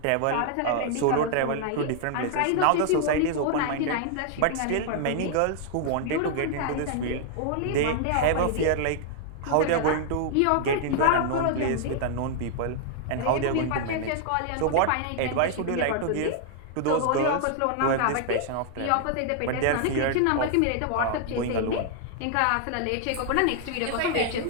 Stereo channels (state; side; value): different; both; correlation -0.01